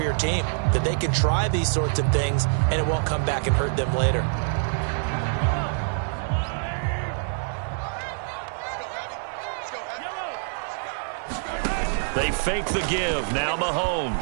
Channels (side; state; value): left; silent; 60 dB below the other